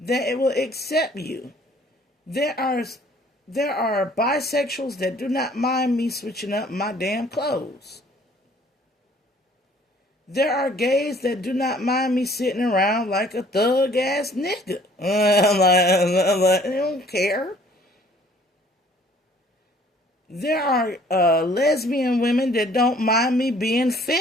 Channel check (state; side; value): normal; both; correlation 0.56